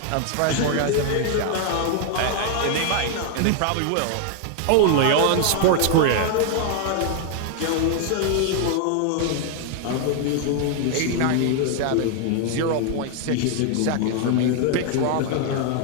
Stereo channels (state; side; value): different; both; correlation 0.00